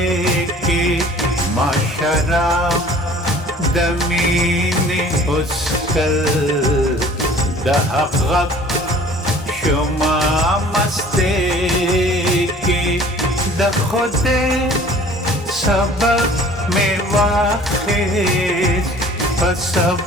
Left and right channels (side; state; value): both; normal; correlation 0.49